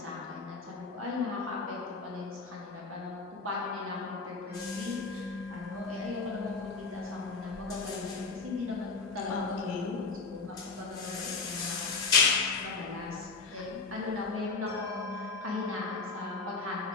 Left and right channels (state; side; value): quieter; right; 4.2 dB